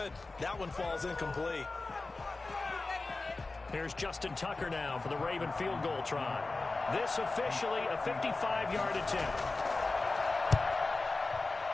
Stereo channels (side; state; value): right; quieter; 3.5 dB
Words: That one falls incomplete. Here's Justin Tucker now for the Raven field goal try. This officially a 55-yard attempt.